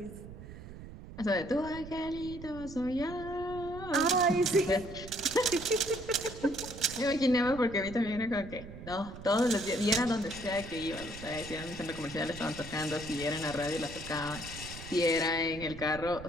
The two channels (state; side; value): noise; right; rumble, 13 dB below the sound